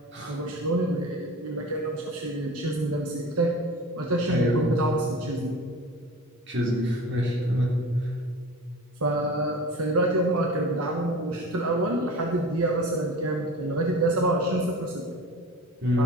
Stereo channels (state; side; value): normal; both; correlation 0.37